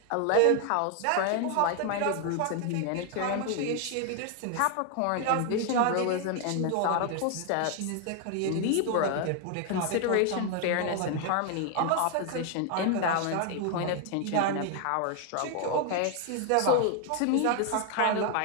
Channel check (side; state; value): both; different; correlation 0.01